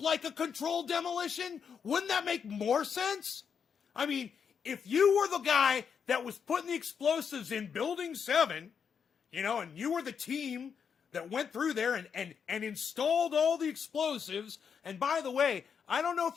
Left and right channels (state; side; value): quieter; right; 6.8 dB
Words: like a controlled demolition? Wouldn't that make more sense? I mean, if you were the guy that was putting the explosives in Building 7, and you were the team that went through there and installed all the explosives, and by the way, I don't know